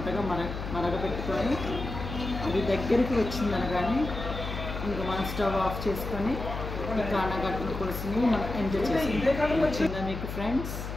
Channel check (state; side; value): noise; left; hum, 6 dB below the sound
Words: మరగపెట్టుకొని అది దగ్గరికి వచ్చిందనగానే ఇంకా మనం స్టవ్ ఆఫ్ చేసుకొని ఈ కానాగర్తల పులుసుని మనం ఎంజాయ్ చేసుకుంటాం. వచ్చిందా మీకు ఫ్రెండ్స్?